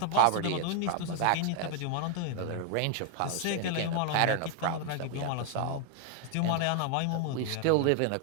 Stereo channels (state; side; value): different; both; correlation 0.00